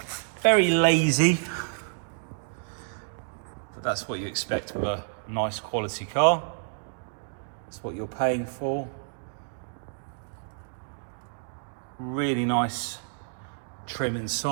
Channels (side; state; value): left; silent; digital silence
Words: very lazy. But that's what you expect with a nice quality car. That's what you're paying for. Really nice trim